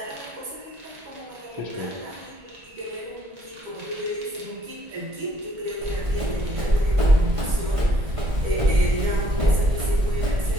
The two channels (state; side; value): late; left; 1.5 ms